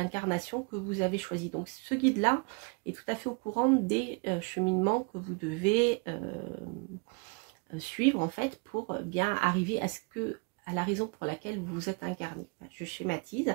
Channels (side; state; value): left; quieter; 32.9 dB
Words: que vous avez choisie. Donc ce guide-là est tout à fait au courant des cheminements que vous devez suivre en fait pour bien arriver à la raison pour laquelle vous vous êtes incarné. Je schématise,